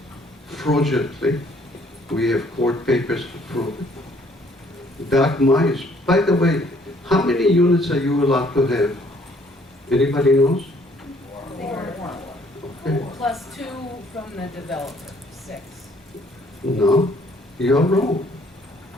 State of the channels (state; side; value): normal; both; correlation 0.62